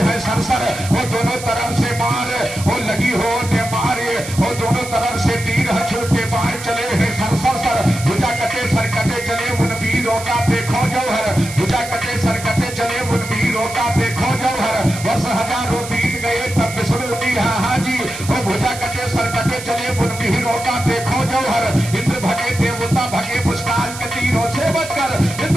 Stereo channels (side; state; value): right; noise; hiss, 11 dB below the sound